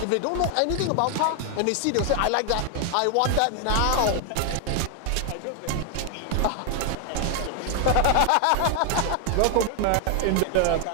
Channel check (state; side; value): different; both; correlation 0.00